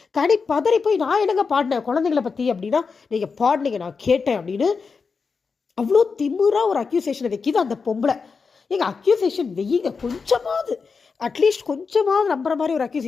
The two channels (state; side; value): quieter; right; 5.1 dB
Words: கனி பதறி போய், நான் என்னங்க பாடினேன் குழந்தைங்களை பற்றி அப்படின்னா, நீங்கள் பாடினீங்க நான் கேட்டேன் அப்படின்னு அவ்வளோ திமுறாக ஒரு அக்யூசேஷனை வைக்கிது அந்த பொம்பளை. எங்கள் அக்யூசேஷன் வெய்யுங்க, கொஞ்சமாவது அட்லீஸ்ட் கொஞ்சமாவது நம்புற மாதிரி ஒரு